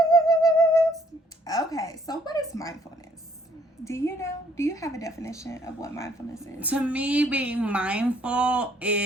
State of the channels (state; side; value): normal; both; correlation 0.65